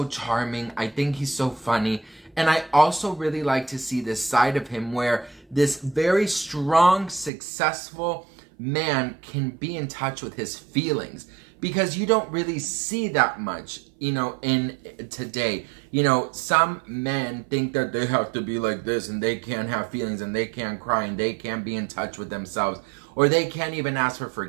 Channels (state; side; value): drops out; left; at 7.3 s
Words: charming. I think he's so funny. And I also really like to see this side of him where this very strong, successful man can be in touch with his feelings. Because you don't really see that much, you know, in today. You know, some men think that they have to be like this and they can't have feelings and they can't cry and they can't be in touch with themselves. Or they can't even ask for